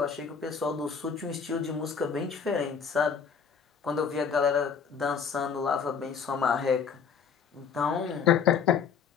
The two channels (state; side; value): quieter; right; 6.4 dB